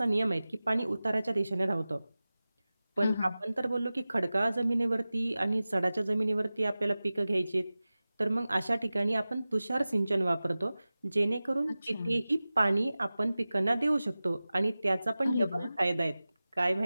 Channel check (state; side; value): inverted; both; correlation -0.97